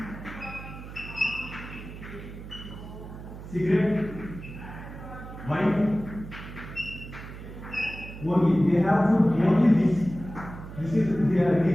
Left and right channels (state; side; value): noise; right; hum, 12 dB below the sound